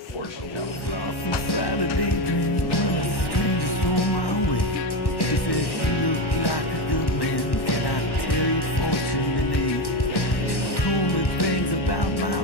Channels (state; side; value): late; right; 1.1 ms